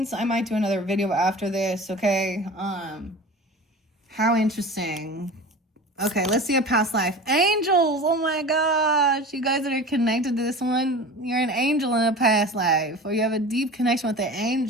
I might do another video after this, okay? How interesting. Okay, let's see a past life. Angels! Oh my gosh! You guys that are connected to this one, you're an angel in a past life. Or you have a deep connection with the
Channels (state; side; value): normal; both; correlation 0.36